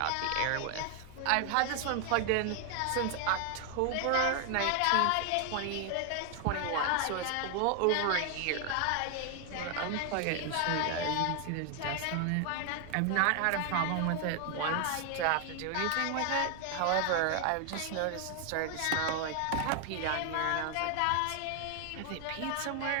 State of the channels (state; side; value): different; both; correlation 0.00